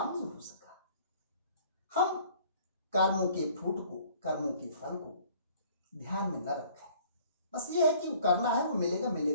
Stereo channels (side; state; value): both; inverted; correlation -0.54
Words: नहीं हो सका. हम कर्मों के फ्रूट को, कर्मों के फल को ध्यान में न रखें. बस ये है कि करना है, वो मिलेगा